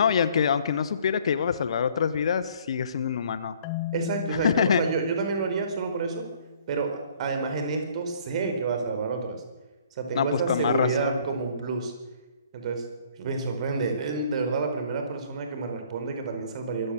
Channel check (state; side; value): inverted; both; correlation -0.58